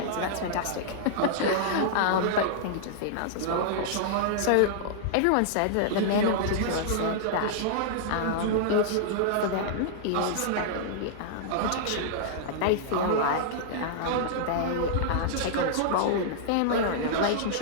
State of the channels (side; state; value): both; different; correlation -0.01